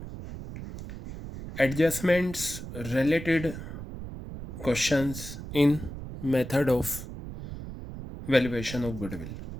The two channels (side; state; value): right; noise; rumble, 10 dB below the sound